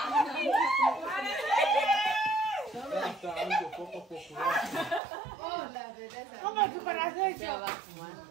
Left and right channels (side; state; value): left; drops out; at 5.0 s